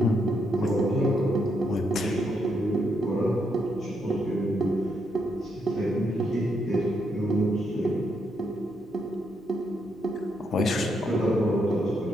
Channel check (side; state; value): both; normal; correlation 0.78